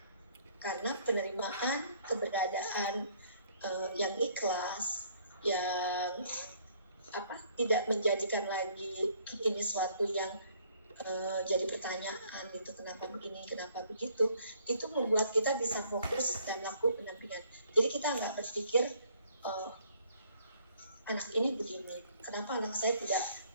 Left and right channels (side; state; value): both; inverted; correlation -0.62